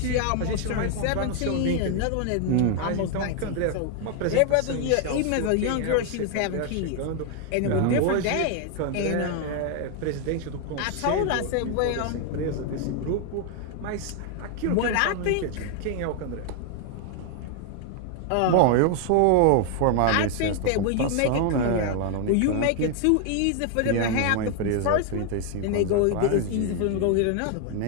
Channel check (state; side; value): different; both; correlation 0.00